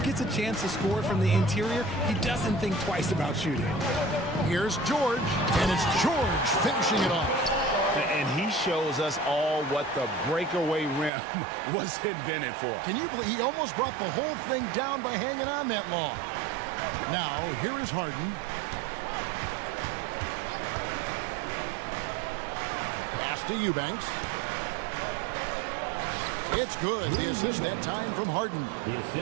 gets a chance to score from the interior, he doesn't think twice about shooting. Here's George, and it's George finishing it off. And he shows us all what the breakaway rim was invented for. Can you believe he almost brought the whole thing down by hanging on that long? Now, here is Harden. Pass to Eubanks. It's good. The assist that time from Harden.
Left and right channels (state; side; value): drops out; left; at 11.1 s